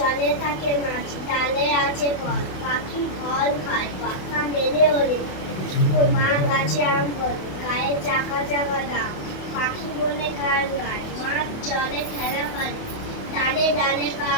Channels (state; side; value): late; right; 28 ms